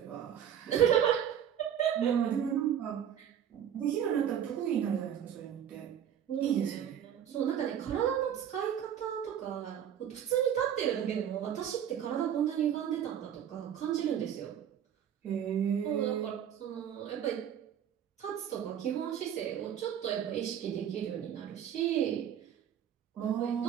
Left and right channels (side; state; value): left; quieter; 9.4 dB